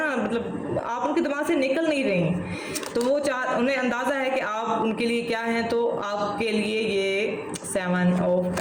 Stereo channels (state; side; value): identical; both; correlation 1.00